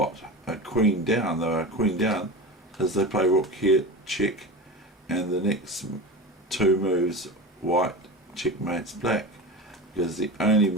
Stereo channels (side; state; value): both; normal; correlation 0.28